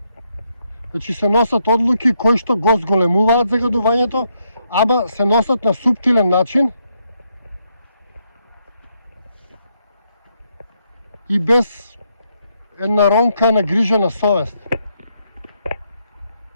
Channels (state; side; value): inverted; both; correlation -0.78